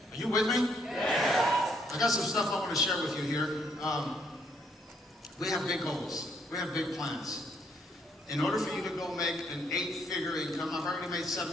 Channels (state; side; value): normal; both; correlation 0.70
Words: Are you with me? Yes. I got some stuff I want to share with you here. We have big goals. We have big plans. In order for you to go make an 8-figure income, I've already made